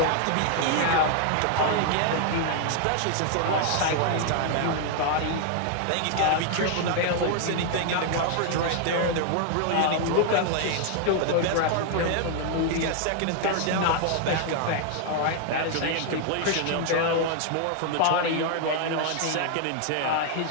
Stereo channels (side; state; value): both; different; correlation 0.00